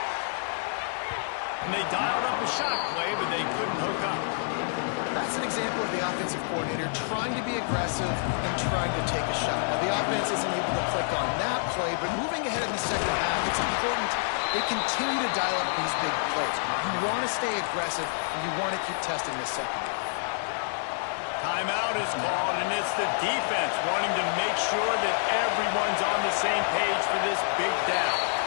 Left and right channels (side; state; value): right; silent; digital silence